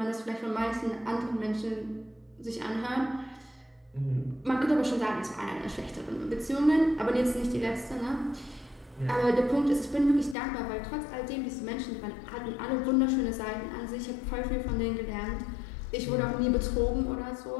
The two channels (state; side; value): drops out; right; at 10.4 s